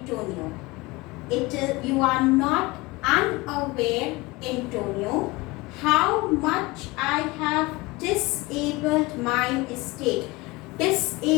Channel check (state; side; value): quieter; right; 22.6 dB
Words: You are not unaware, Antonio, how much I have disabled my estate.